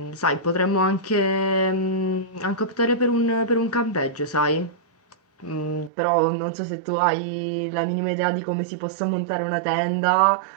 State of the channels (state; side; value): drops out; left; at 5.9 s